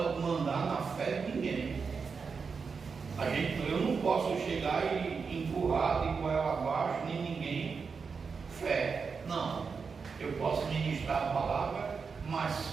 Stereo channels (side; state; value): left; quieter; 5.4 dB